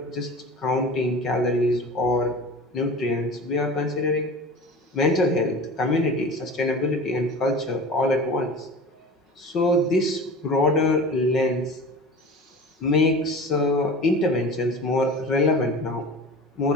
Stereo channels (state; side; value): normal; both; correlation 0.36